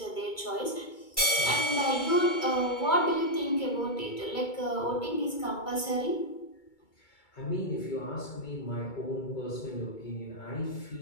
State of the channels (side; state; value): right; late; 2.2 ms